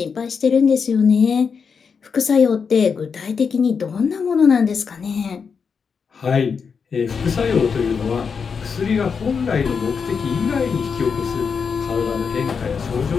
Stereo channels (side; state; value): right; quieter; 5.9 dB